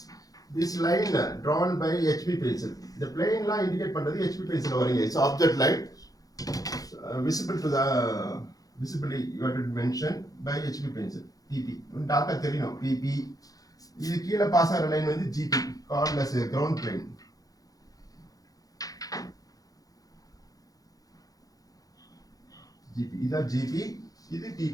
This line drawn by HB pencil. The plane line indicate பண்றது HB pencil வரீங்க. It's object line visible to the visibly you have to mention by HB pencil. PP. Tata தெரியணும். PP. இது கீழ பாஸ் ஆகிற லைன் வந்து GP. Called as a ground plane. GP. This is GP, this is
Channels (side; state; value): right; late; 0.17 ms